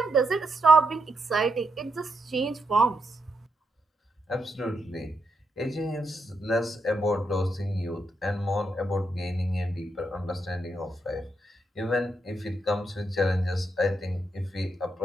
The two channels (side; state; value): both; normal; correlation 0.81